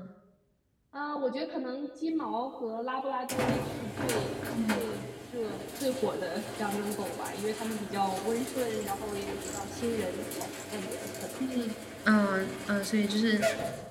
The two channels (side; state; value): both; identical; correlation 1.00